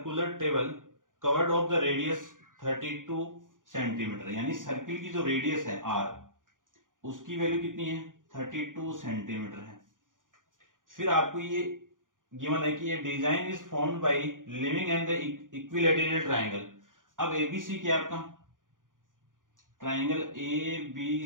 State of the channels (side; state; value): left; late; 0.89 ms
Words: table covered of the radius 32 centimetre, यानी सर्किल की जो रेडियस है आर, उसकी वैल्यू कितनी है 32 सेंटीमीटर है। फिर आपको ये गिवन है कि ये design is formed by living and the equilateral triangle. अब एबीसी क्या आपका triangle A